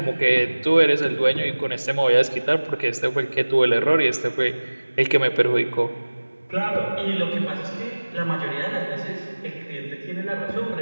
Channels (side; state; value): both; inverted; correlation -1.00